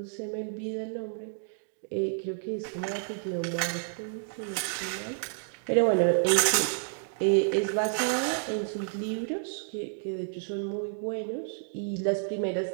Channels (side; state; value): left; silent; digital silence